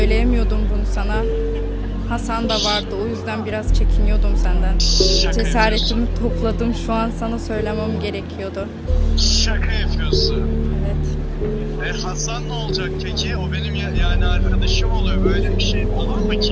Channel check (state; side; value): identical; both; correlation 1.00